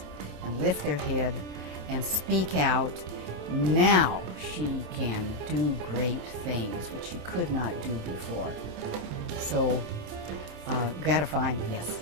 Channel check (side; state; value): left; late; 27 ms